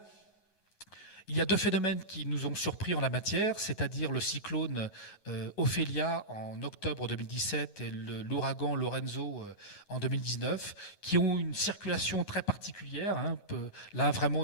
il y a deux phénomènes qui nous ont surpris en la matière, c'est-à-dire le cyclone Ophélia en octobre 2017 et l'ouragan Lorenzo en 2019, qui ont une circulation très particulière, hein, là vraiment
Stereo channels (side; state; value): right; late; 9.5 ms